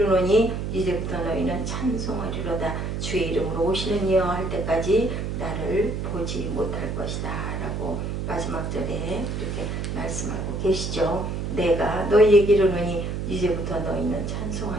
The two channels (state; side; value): noise; right; hum, 3 dB below the sound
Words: 이제부터 너희는 찬송하리로다. 주의 이름으로 오시는 이여 할 때까지 나를 보지 못할 것이다 라고 마지막 절에 이렇게 말씀하고 계시죠. 내가 너희에게 이르노니 이제부터 너희는